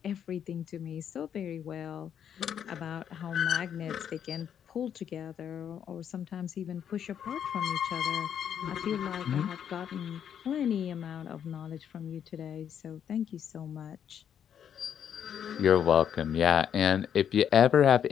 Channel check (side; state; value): right; quieter; 8.8 dB